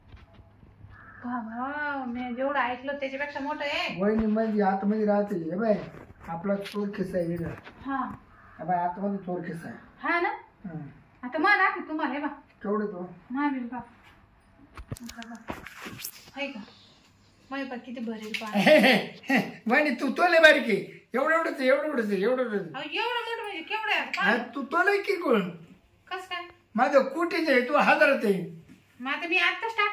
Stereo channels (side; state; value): both; identical; correlation 1.00